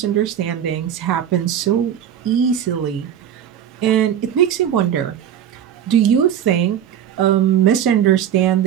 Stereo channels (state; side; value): quieter; left; 9.6 dB